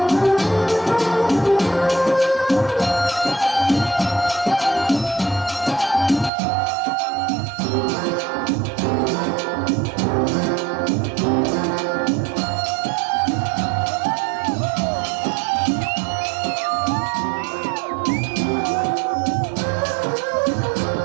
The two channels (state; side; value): drops out; left; at 6.3 s